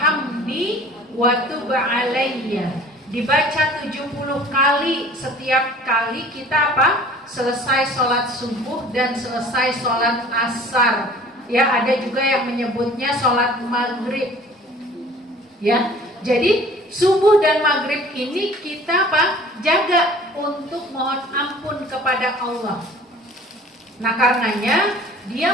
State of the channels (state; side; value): normal; both; correlation 0.48